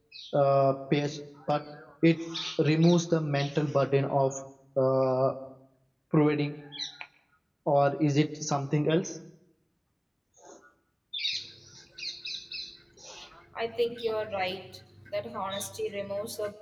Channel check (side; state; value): both; identical; correlation 1.00